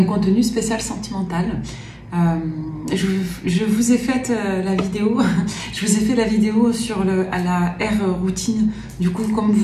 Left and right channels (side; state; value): both; identical; correlation 1.00